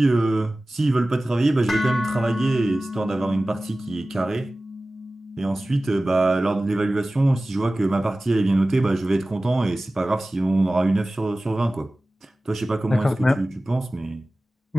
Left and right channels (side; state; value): both; normal; correlation 0.97